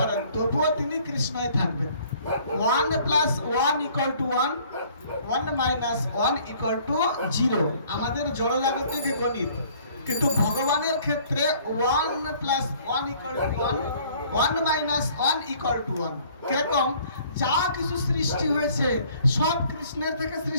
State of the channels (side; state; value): both; inverted; correlation -0.57